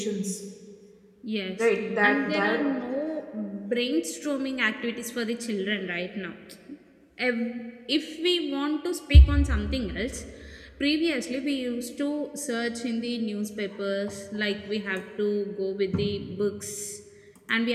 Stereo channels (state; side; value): identical; both; correlation 1.00